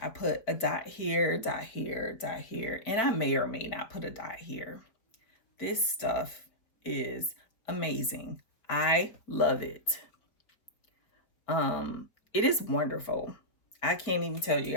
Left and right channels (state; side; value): late; right; 4.2 ms